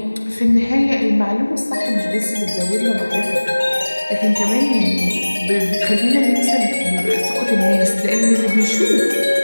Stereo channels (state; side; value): inverted; both; correlation -1.00